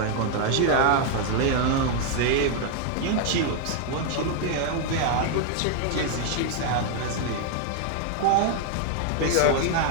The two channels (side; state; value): both; different; correlation 0.00